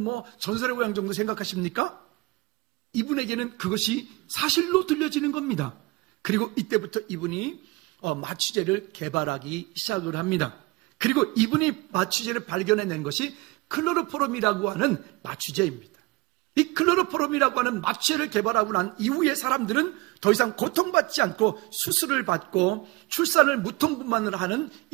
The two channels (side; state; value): left; quieter; 22.7 dB